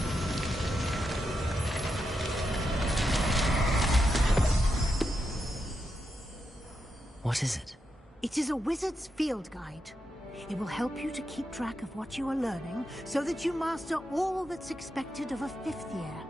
What is it? It is a wizard's field guide. It will help you to keep track of what you are learning so that you master all that's expected of a 5th year.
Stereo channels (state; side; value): normal; both; correlation 0.85